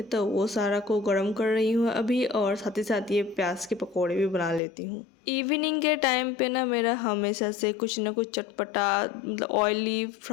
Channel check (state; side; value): drops out; right; at 4.6 s